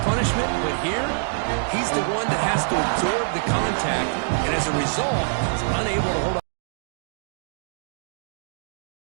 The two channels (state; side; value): silent; left; digital silence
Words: punishment, but here, he's the one that has to absorb the contact, and as a result, he's unable to hold on.